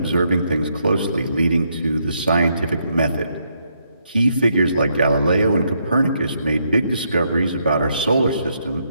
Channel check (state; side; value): inverted; both; correlation -0.76